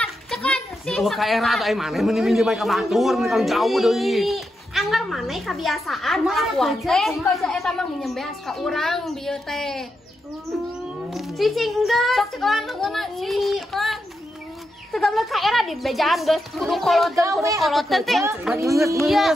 Oh ka era atuh ai maneh meni minjem ka batur, meni kalau jauh deui. Anggar maneh kebiasaan kelakuan teh. Baca eta mah nginjem beas ka urang dieu teh. Cicing geus. Sok cekelan leungeunna cekelan. Tegamle ka era di bejaan geus kudu koloten teh.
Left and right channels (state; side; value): normal; both; correlation 0.85